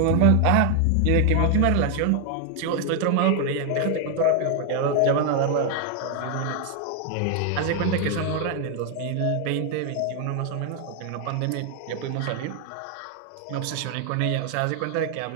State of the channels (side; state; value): both; different; correlation 0.00